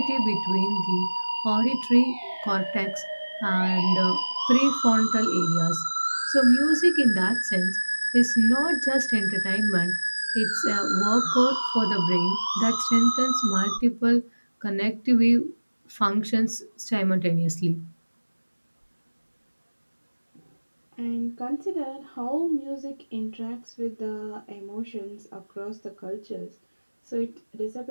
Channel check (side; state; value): both; inverted; correlation -1.00